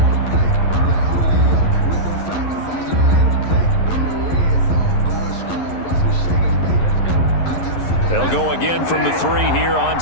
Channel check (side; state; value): right; late; 11 ms